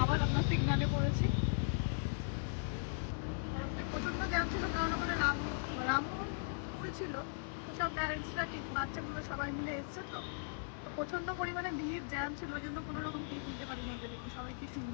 আবার আমরা সিগনালে পড়েছি। রাস্তায় প্রচন্ড জ্যাম ছিল, কারণ ওখানে রামমোহন স্কুল ছিল, তো সব প্যারেন্টসরা ঠিক বাচ্চাগুলো সবাই মিলে এসছে, তো প্রচন্ড পরিমাণে ভিড় জ্যাম ছিল, ওই জন্য কোনো রকম ক্লিপ নিতে পারি না। দেখুন সবাই কি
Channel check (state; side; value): silent; right; digital silence